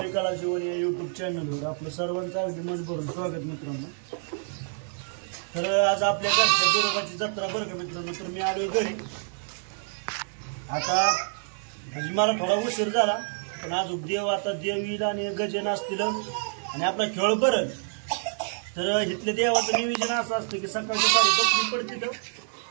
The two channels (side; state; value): left; silent; 60 dB below the other